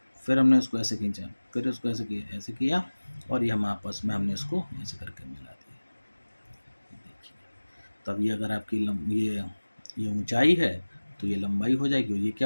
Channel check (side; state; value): both; inverted; correlation -1.00